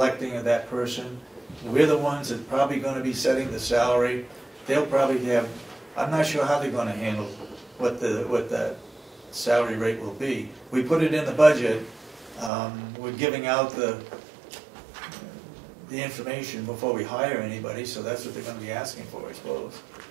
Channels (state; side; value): drops out; left; at 12.5 s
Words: of that person. We're the ones that probably going to be setting the salary. They'll probably have, I'm not sure how they're going to handle what that salary rate will be. We put it in the budget. We're giving out the information before we hire anybody, so that's what they're going to be asking for, I suppose.